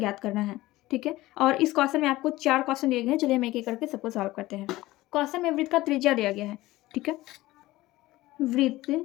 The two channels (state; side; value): quieter; right; 17.8 dB